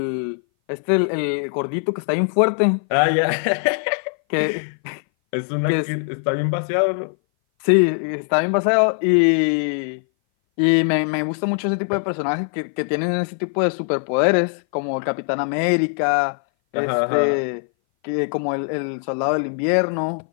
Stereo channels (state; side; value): silent; right; 59 dB below the other